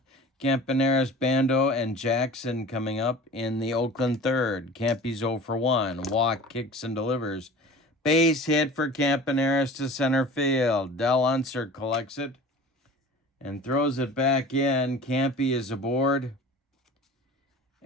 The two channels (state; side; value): normal; both; correlation 0.40